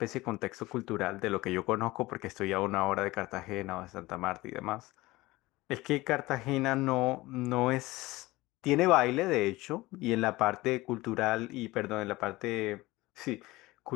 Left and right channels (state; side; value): quieter; right; 19.7 dB